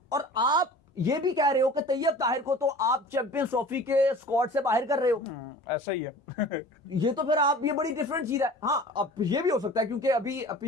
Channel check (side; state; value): both; normal; correlation 0.42